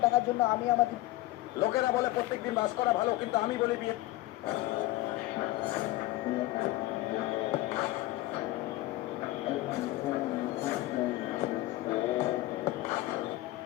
দেখার জন্য আমি আমাদের লোকেরা বলে প্রত্যেকদিন বাস করা ভালো, কিন্তু আমি বলি বিয়ে।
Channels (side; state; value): right; quieter; 17.6 dB